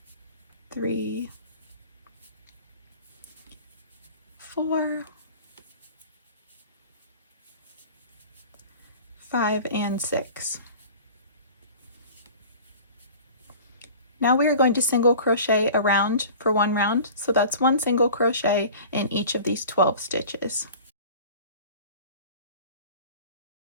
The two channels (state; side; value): inverted; both; correlation -0.41